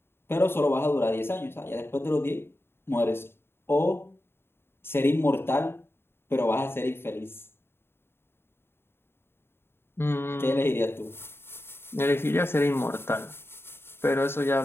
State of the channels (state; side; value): late; right; 0.11 ms